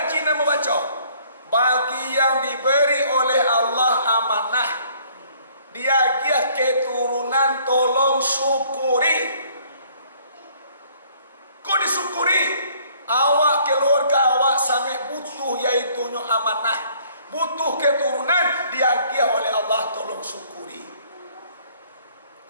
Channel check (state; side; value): inverted; both; correlation -0.60